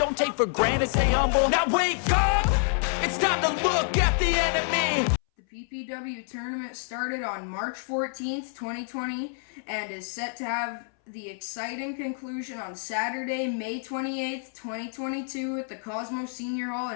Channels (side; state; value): right; silent; 60 dB below the other